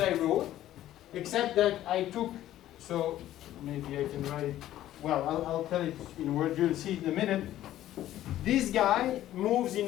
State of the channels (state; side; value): quieter; right; 13.3 dB